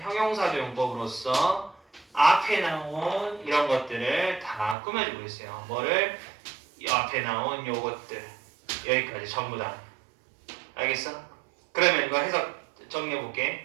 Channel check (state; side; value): drops out; left; at 4.8 s